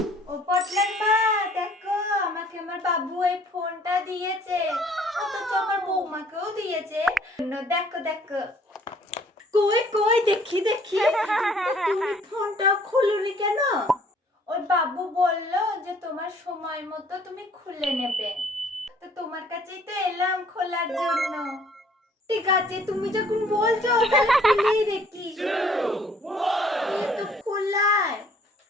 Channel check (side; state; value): both; normal; correlation 0.58